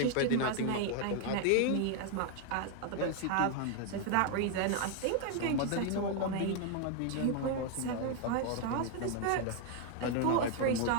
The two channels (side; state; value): both; different; correlation 0.00